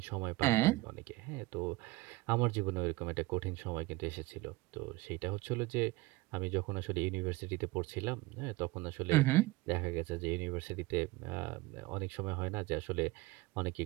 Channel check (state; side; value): quieter; left; 21.0 dB